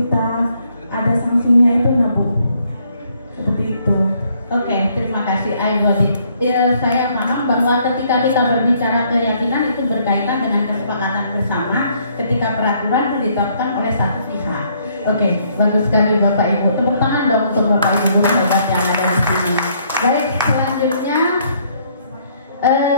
ada sanksinya itu Nabu. Seperti itu. Oke, terima kasih Aibodit. Saya paham bahwa ketika kita berbicara keyakinan itu berkaitan dengan kesepakatan bersama ketika peraturan itu ditetapkan oleh satu pihak. Oke, bagus sekali Bapak Ibu. Tepuk tangan dong untuk Bapak Ibu guru hebat yang ada di sini. Baik, selanjutnya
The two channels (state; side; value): inverted; both; correlation -0.67